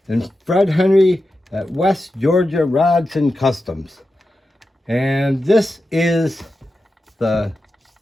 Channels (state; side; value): normal; both; correlation 0.91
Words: and Fred Henry at West Georgia Rods and Customs. And this is the